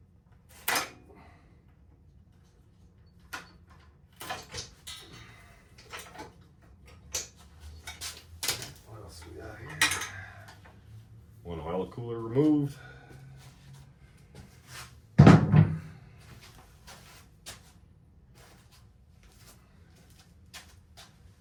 What else we got here? One oil cooler removed.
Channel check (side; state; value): both; identical; correlation 1.00